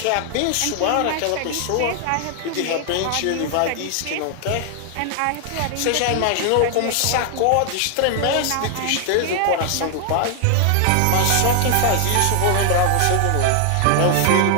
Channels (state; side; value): different; both; correlation 0.00